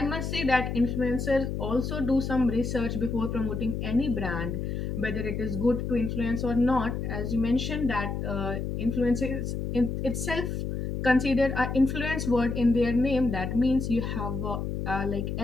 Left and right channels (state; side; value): noise; left; hum, 3 dB below the sound